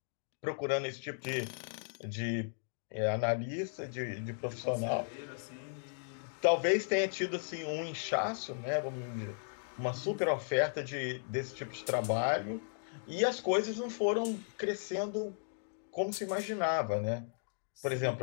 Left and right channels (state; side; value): silent; right; digital silence